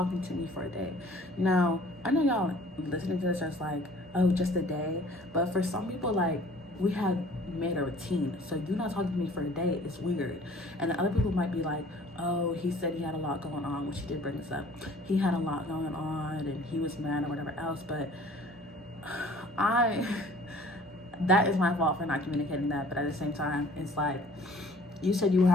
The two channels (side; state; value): both; normal; correlation 0.52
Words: me for a day. Now I know y'all listening to this just like, oh, just a day, but for some people, like, we have made a routine, so you not talking to me for a day is weird. And the other people might be like, oh, he said he had a lot going on, which he did bring this up. He had a lot going on and he was mad or whatever else, but that is my fault for not communicating that. But at the same time, it's like, you said you